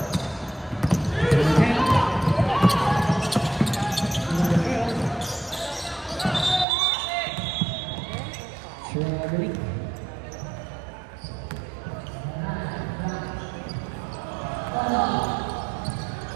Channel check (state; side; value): drops out; left; at 6.7 s